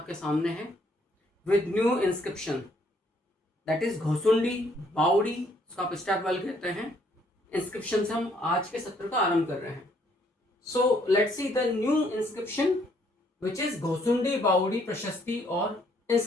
सामने है with new inscription, that is Ghosundi बावड़ी, उसका आप स्टेप वेल कहते हैं। इंस्क्रिप्शन से हम आज के सत्र का आरंभ कर रहे हैं। So let's see the new inscription which is Ghosundi बावड़ी प्रशस्ति और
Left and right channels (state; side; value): normal; both; correlation 0.67